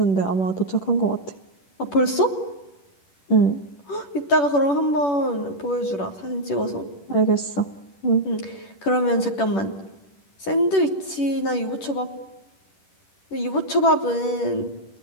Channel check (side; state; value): right; late; 10 ms